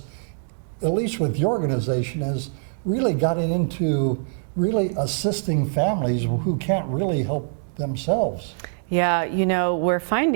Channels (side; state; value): left; silent; digital silence